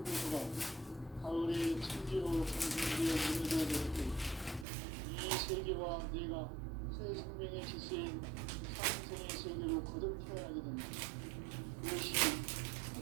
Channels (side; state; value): left; drops out; at 4.7 s